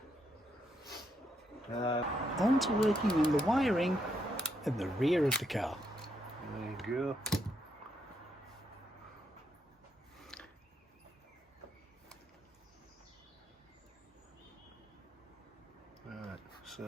On to working on the wiring at the rear of the car. There you go. Right,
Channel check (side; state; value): both; normal; correlation 0.78